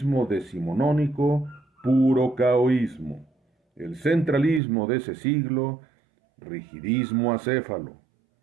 decimonónico, puro caoísmo. El centralismo de ese siglo, rigidismo acéfalo.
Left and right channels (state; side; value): drops out; left; at 4.6 s